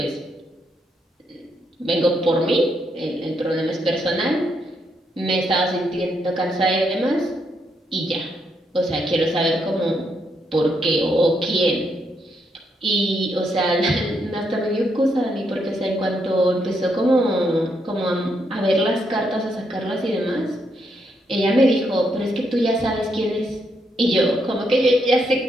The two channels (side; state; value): both; normal; correlation 0.78